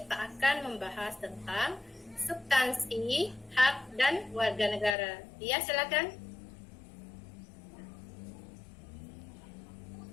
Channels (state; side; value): drops out; right; at 5.0 s